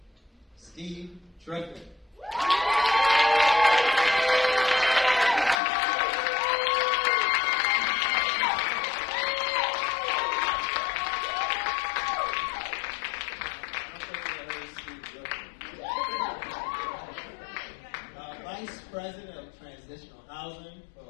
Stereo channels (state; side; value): drops out; right; at 5.6 s